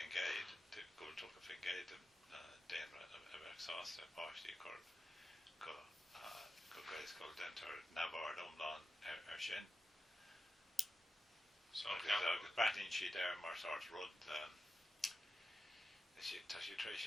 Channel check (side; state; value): both; normal; correlation 0.92